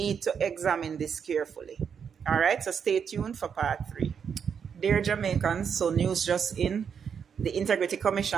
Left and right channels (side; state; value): left; quieter; 7.1 dB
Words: to examine this carefully. All right, so stay tuned for part 3. Dear Jamaicans, so news just in. The Integrity